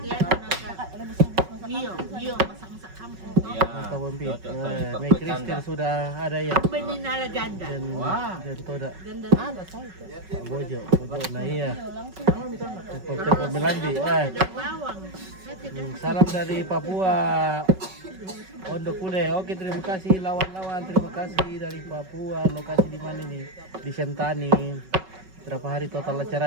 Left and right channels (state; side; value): late; left; 5.3 ms